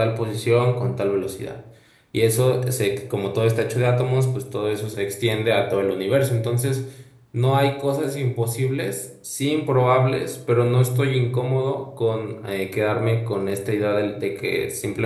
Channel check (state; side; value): identical; both; correlation 1.00